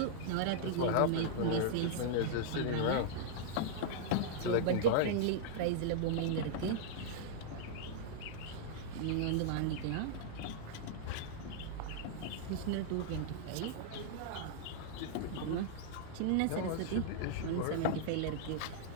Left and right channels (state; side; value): different; both; correlation -0.02